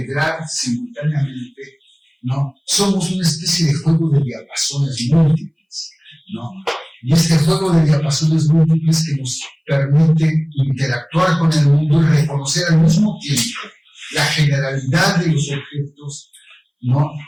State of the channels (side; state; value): both; identical; correlation 1.00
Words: simultáneamente, ¿no? Somos una especie de juego de diapasones múltiples, ¿no? Y este juego de diapasones múltiples que nos permite interactuar con el mundo y reconocer al mismo tiempo la generalidad de los objetos, ¿no?,